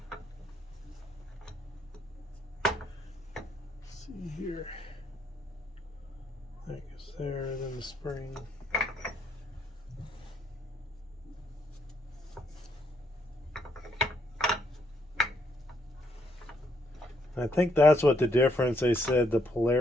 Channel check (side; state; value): both; normal; correlation 0.73